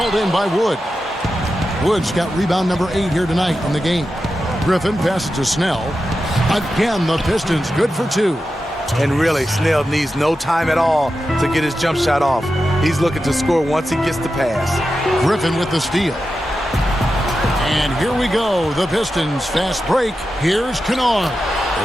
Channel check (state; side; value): normal; both; correlation 0.91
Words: in by Wood. Wood's got rebound number 8 here tonight in the game. Griffin passes to Snell. Again, the Pistons good for 2. And really, Snell needs no time at all to get his jump shot off. He's looking to score once he gets the pass. Griffin with the steal. And here we go. The Pistons fast break. Here's Kennard.